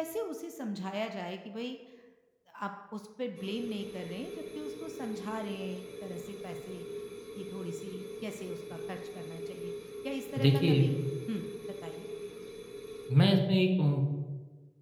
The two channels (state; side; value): identical; both; correlation 1.00